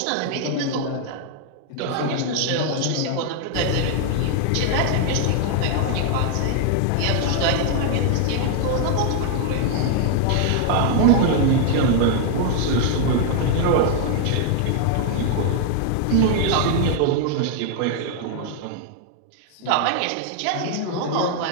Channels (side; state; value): both; different; correlation 0.00